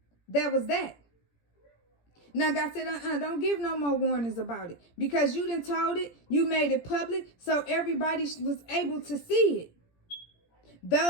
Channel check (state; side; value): late; right; 17 ms